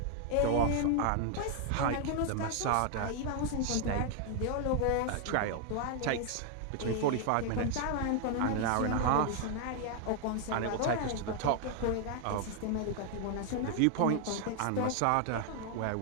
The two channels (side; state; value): both; different; correlation 0.00